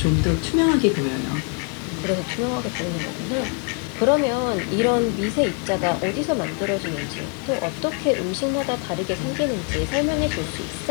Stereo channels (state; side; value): quieter; right; 36.8 dB